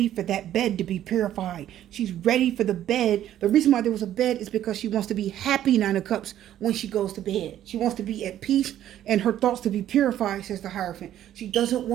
for that bed to be purified. She's ready for the bed. The reason why there was a bed is because she wants to be happy, Nine of Cups, when she goes to bed. She wants to be at peace and her thoughts to be purified, says the Hierophant. She doesn't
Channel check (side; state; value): left; quieter; 11.8 dB